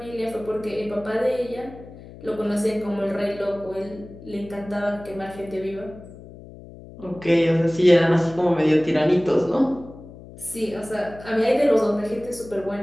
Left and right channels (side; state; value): left; noise; hum, 17 dB below the sound